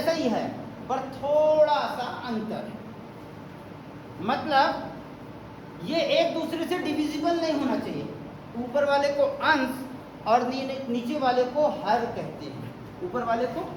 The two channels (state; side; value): identical; both; correlation 1.00